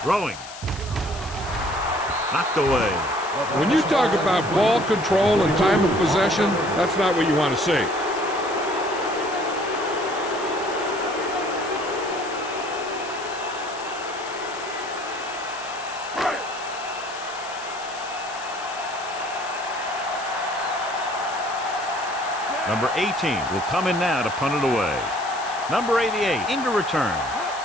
Throwing. Knocked away. When you talk about ball control and time of possession, that's not what you want to see. Number 18 will come in now to punt it away. Number 88 into return.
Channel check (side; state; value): left; noise; hiss, 15 dB below the sound